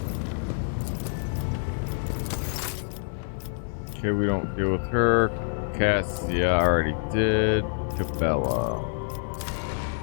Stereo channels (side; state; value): right; silent; 57 dB below the other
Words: Okay, we don't deal with her. Cassia already did. Cabela.